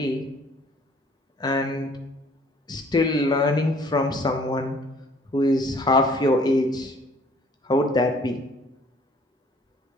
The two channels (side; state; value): both; normal; correlation 0.57